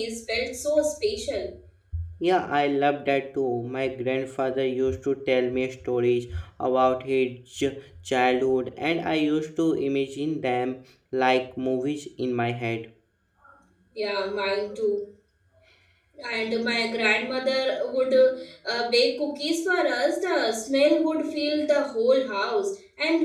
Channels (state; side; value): identical; both; correlation 1.00